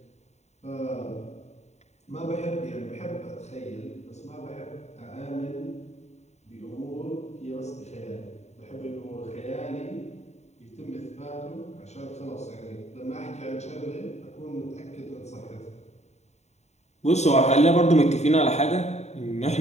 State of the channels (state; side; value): late; right; 0.32 ms